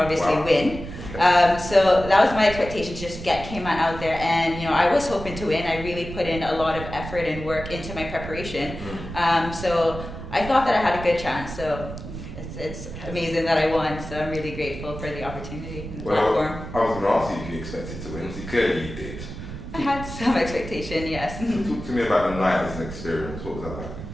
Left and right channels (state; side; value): noise; right; rumble, 10 dB below the sound